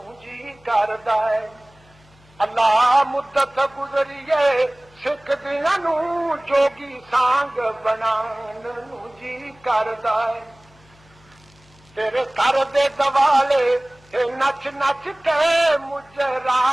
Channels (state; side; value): noise; left; hum, 29 dB below the sound